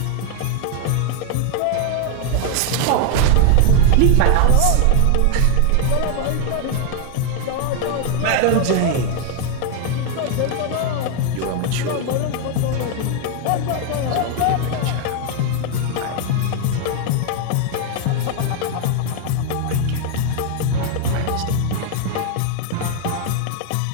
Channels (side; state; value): both; different; correlation 0.01